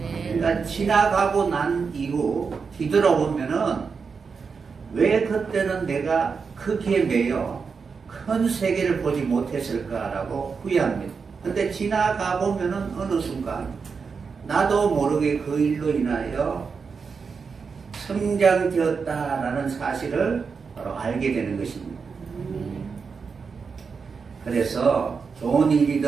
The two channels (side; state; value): left; quieter; 5.4 dB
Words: 그러니까 지나가고 난 이후 뒤돌아보면은 왜 그때는 내가 크기에 매여 큰 세계를 보지 못했을까라고 후회합니다. 근데 지나가 보면은 어느 순간 나도 모르게 그 일로 인하여 성장되었다라는 사실을 바로 알게 되는 것입니다. 그래서 좋은